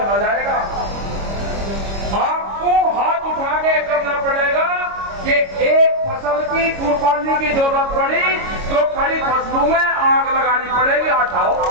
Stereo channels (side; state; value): left; late; 25 ms